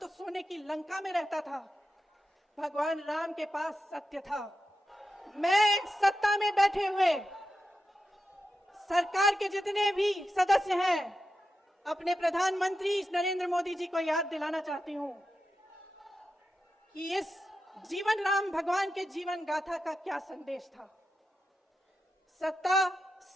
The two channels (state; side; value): normal; both; correlation 0.90